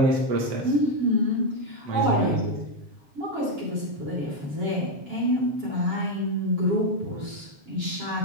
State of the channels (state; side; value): late; left; 7.2 ms